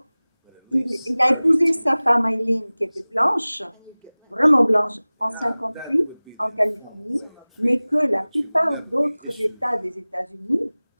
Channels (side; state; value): both; inverted; correlation -1.00